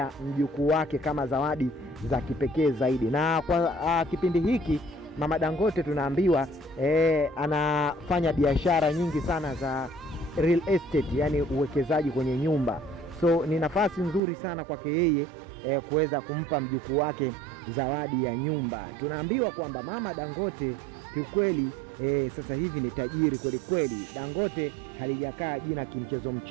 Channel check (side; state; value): left; drops out; at 14.2 s